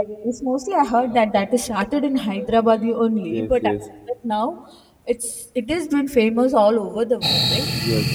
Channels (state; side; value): identical; both; correlation 1.00